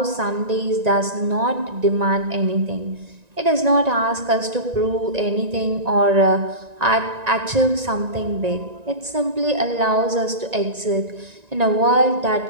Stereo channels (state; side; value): late; left; 1.9 ms